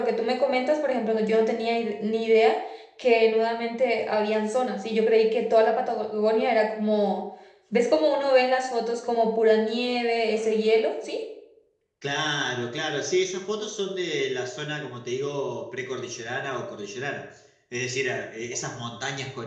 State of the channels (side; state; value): both; identical; correlation 1.00